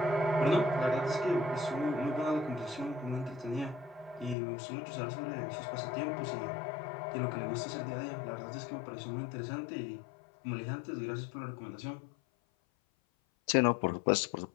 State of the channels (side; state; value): right; drops out; at 4.4 s